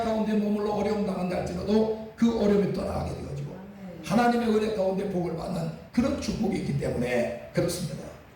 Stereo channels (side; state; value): both; identical; correlation 1.00